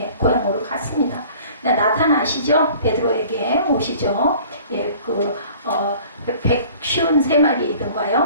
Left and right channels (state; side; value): inverted; both; correlation -0.49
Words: 고향으로 갔습니다. 나타나시죠? 베드로에게 오시죠? 그